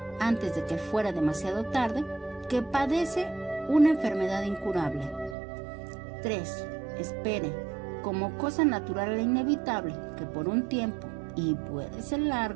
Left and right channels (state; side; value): drops out; left; at 5.4 s